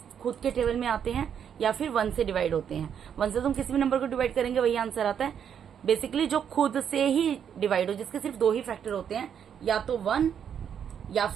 के टेबल में आते हैं या फिर 1 से डिवाइड होते हैं। 1 से तो हम किसी भी नंबर को डिवाइड करेंगे वही आंसर आता है। बेसिकली जो खुद से ही डिवाइड हो, जिसके सिर्फ 2 ही फैक्टर होते हैं, या तो 1 या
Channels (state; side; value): quieter; left; 8.3 dB